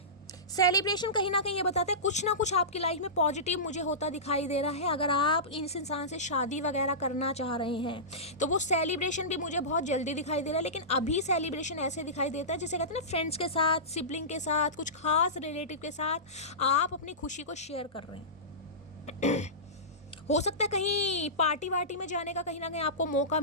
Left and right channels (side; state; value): both; normal; correlation -0.19